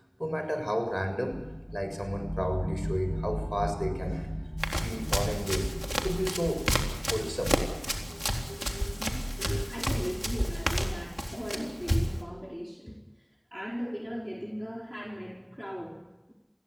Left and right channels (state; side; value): identical; both; correlation 1.00